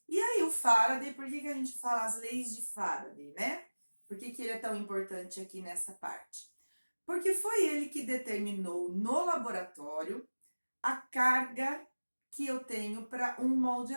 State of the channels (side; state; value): both; inverted; correlation -1.00